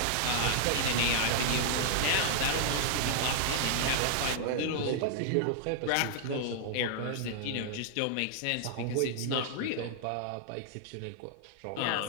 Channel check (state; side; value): different; both; correlation -0.01